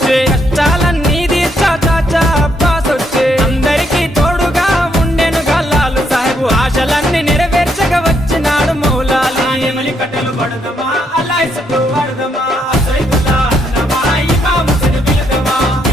కష్టాలన్నీ తీర్చా చాచా అబ్బాస్ వచ్చే అందరికీ తోడుగా ఉండెనుగా లాలు సాహెబు ఆశలన్నీ నెరవేర్చగా వచ్చినాడు మౌలాలి కట్టెలు పడదాం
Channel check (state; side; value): normal; both; correlation 0.75